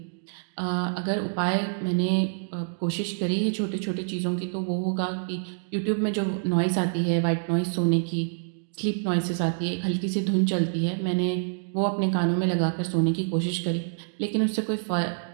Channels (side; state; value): left; silent; digital silence